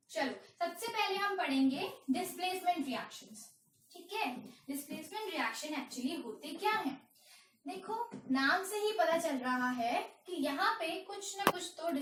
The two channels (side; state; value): both; identical; correlation 1.00